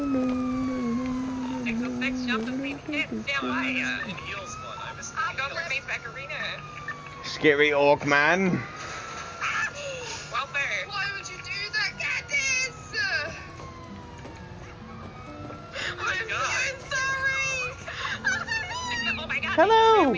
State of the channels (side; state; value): both; identical; correlation 1.00